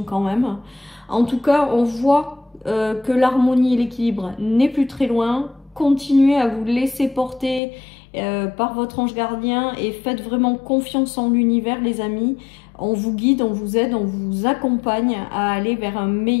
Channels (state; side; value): drops out; right; at 7.6 s